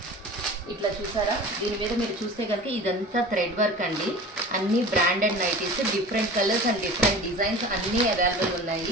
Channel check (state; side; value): normal; both; correlation 0.38